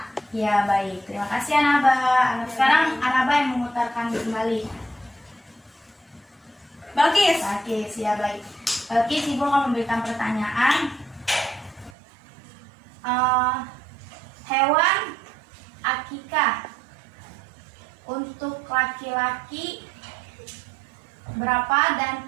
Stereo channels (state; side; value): drops out; left; at 12.0 s